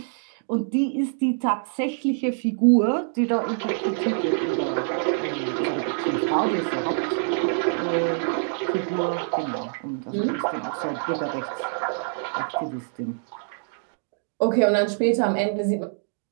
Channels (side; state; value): left; silent; digital silence